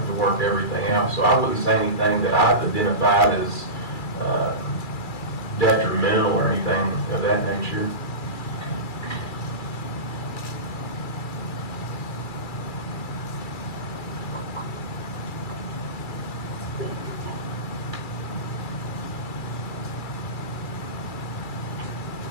work everything out. So I wouldn't say anything that I've identified as detrimental or anything of that nature.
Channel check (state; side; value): late; right; 2.3 ms